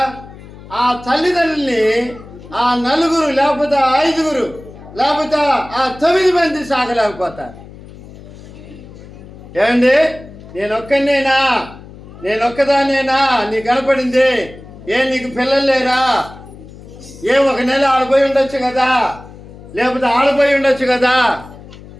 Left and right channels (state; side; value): noise; left; hum, 18 dB below the sound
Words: ఆ తల్లిదండ్రుల్ని ఆ 4 లేకపోతే 5 లేకపోతే ఆ 9 మంది సాగలేకపోతారు. ఏమండి, నేనొక్కదానేనా నీ కనపడింది? నీకు పిల్లలు లేరా? ఒక నెల ఆడిపోయి ఉండొచ్చు కదా, లేకపోతే ఆడిపోయి ఉండొచ్చు కదా